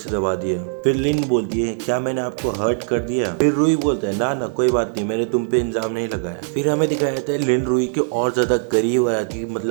दबा दिया। फिर लिन बोलती है क्या मैंने आपको हर्ट कर दिया? फिर रुई बोलता है ना कोई बात नहीं, मैंने तुम पे इल्जाम नहीं लगाया। फिर हमें दिखाया जाता है लिन रुई के और ज्यादा करीब आ जाती है,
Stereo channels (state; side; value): silent; left; digital silence